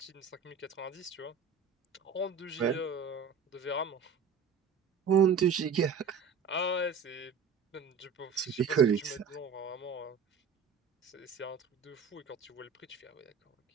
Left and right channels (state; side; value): quieter; left; 5.9 dB